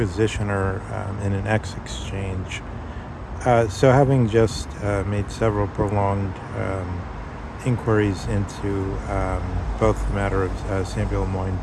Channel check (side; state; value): both; identical; correlation 1.00